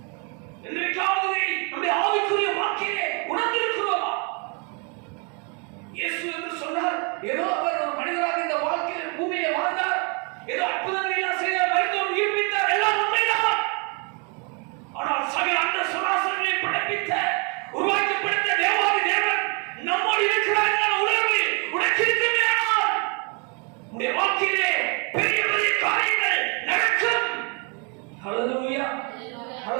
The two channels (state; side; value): quieter; left; 34.5 dB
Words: இன்றைக்காவது நம்முடைய ஆவிக்குரிய வாக்கிலே உணர்ந்திருக்கிறோமா? இயேசு என்று சொன்னார், ஏதோ அவர் ஒரு மனிதராக இந்த வாழ்க்கையில் பூமியை வாழ்ந்தார், ஏதோ அற்புதங்களை எல்லாம் செய்தார், மருத்துவம் உயிர்ப்பித்தார், எல்லாம் உண்மைதான். ஆனால் சகல அந்த சராசரங்களை படைப்பித்த உருவாக்கப்படுத்த தேவாதி தேவன் நம்மோடு இருக்கிறார் என்ற உணர்வு உனக்கு இருக்குமே. ஆனால் உன்னுடைய வாழ்க்கையிலே பெரிய பெரிய காரியங்கள் நடக்கும். ஹல்லேலூயா,